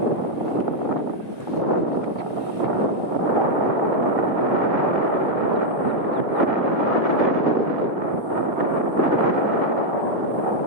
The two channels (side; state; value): left; late; 1.8 ms